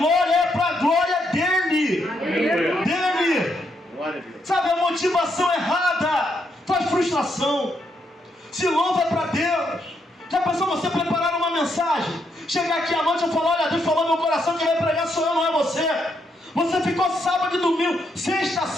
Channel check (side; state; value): both; normal; correlation 0.77